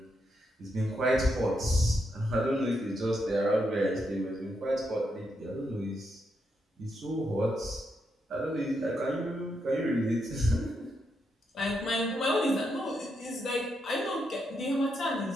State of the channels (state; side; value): normal; both; correlation 0.81